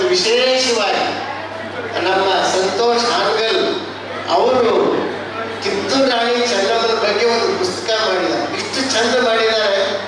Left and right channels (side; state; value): both; identical; correlation 1.00